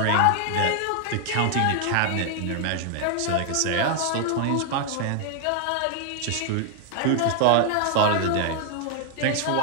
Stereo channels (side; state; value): both; different; correlation 0.00